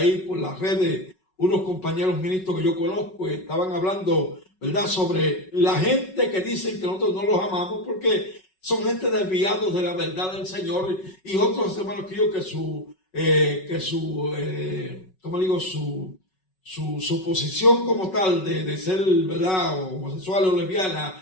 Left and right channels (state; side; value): late; right; 5.4 ms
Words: por las redes, unos compañeros ministros que yo conozco, estaban hablando, ¿verdad?, sobre la gente que dicen que nosotros no los amamos porque son gente desviados de la verdad del Señor, y otros hermanos que yo su posición como tal de ser, ¿verdad?, homosexual o